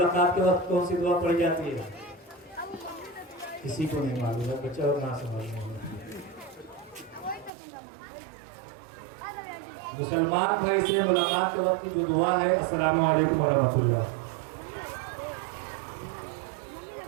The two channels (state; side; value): drops out; left; at 7.5 s